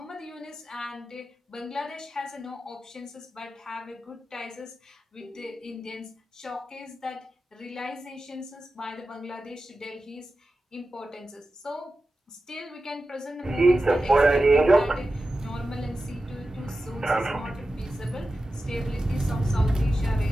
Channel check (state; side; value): normal; both; correlation 0.93